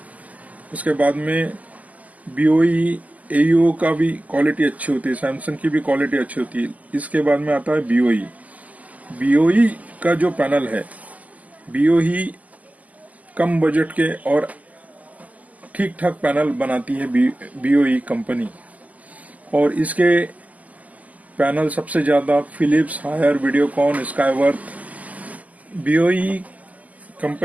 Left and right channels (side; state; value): left; late; 0.076 ms